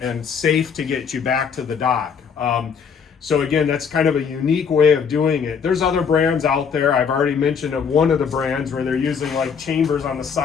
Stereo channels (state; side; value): quieter; right; 6.5 dB